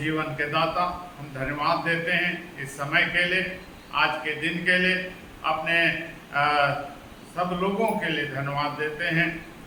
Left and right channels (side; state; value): both; identical; correlation 1.00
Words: के दाता, हम धन्यवाद देते हैं इस समय के लिए, आज के दिन के लिए, अपने सब लोगों के लिए धन्यवाद देते हैं।